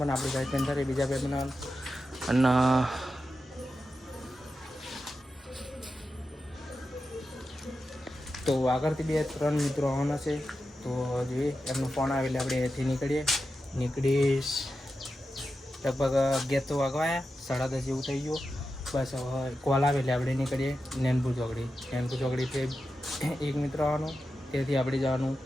પણ આપણે વ્હાઇટ પેન્થર એ બીજા બાઇક બનાવવાનું. અને તો આગળથી 2-3 મિત્રો આવવાના છે, તો જોઈએ એમનો ફોન આવે એટલે આપણે અહીંથી નીકળીશ. લગભગ 11 તો વાગવાયા, 10:30 જેવું થઈ ગયું. બસ હવે કોલ આવે એટલે આપણે નીકળીએ નૈનપુર ચોકડીથી એક મિત્ર આવવાનો, ત્યાંથી આપણે જવાનું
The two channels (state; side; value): normal; both; correlation 0.90